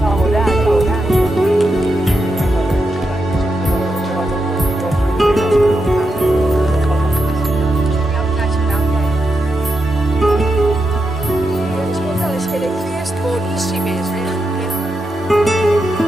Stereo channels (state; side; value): normal; both; correlation 0.86